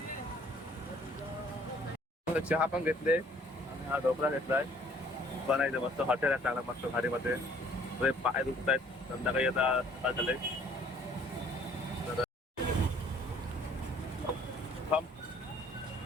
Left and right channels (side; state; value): both; normal; correlation 0.58